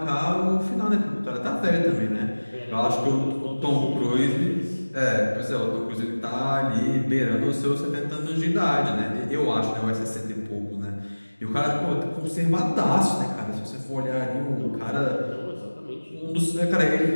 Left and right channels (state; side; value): inverted; both; correlation -1.00